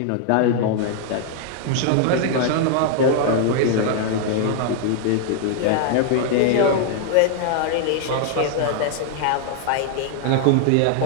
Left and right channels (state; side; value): different; both; correlation 0.00